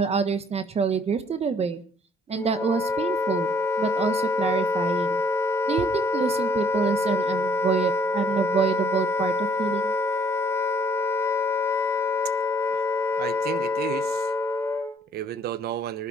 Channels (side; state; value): both; normal; correlation 0.62